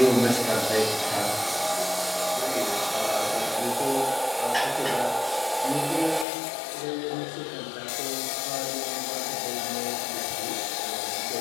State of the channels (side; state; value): right; drops out; at 6.2 s